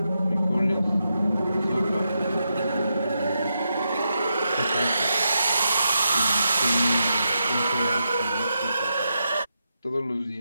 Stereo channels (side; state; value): both; inverted; correlation -0.85